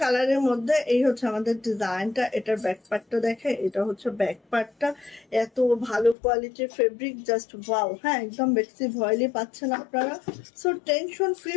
কালারের মধ্যে এই হচ্ছে আমাদের ডিজাইনটা। এটার ব্যাক পার্টটা দেখে, এটা হচ্ছে ব্যাক পার্টটা, এত ভালো কোয়ালিটির ফেব্রিক, জাস্ট ওয়াও। হ্যাঁ, একদম বেক্সি ভয়েলি পাচ্ছেন আপনারা। সো টেনশন ফ্রি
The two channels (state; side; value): drops out; right; at 6.2 s